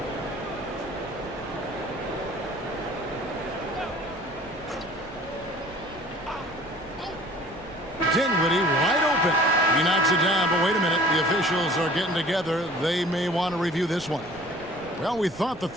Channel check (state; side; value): noise; right; rumble, 20 dB below the sound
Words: Dinwiddie wide open. He knocks it down, but wait a minute. The officials are getting together. They may want to review this one. Well, we thought the